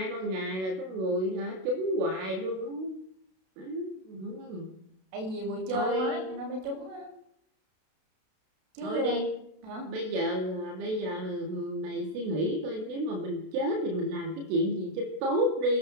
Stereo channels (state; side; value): late; left; 32 ms